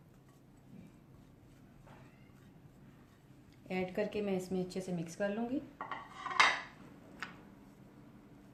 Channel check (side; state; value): both; identical; correlation 1.00